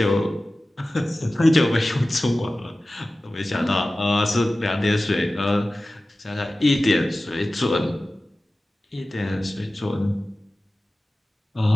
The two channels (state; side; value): normal; both; correlation 0.96